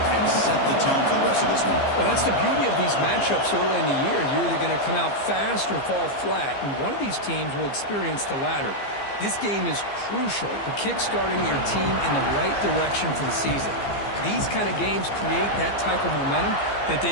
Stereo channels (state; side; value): late; right; 15 ms